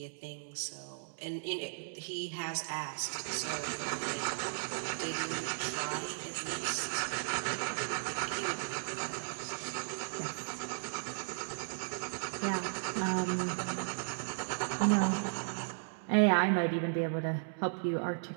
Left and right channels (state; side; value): silent; left; digital silence